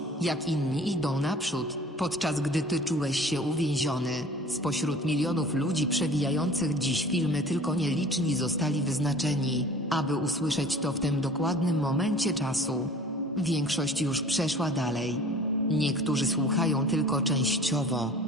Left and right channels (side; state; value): both; normal; correlation 0.45